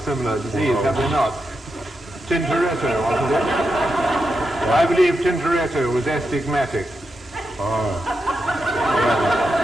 similar disease, have they not? Tintoretto, wasn't it? I believe Tintoretto was astigmatic. Oh.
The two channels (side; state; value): both; normal; correlation 0.86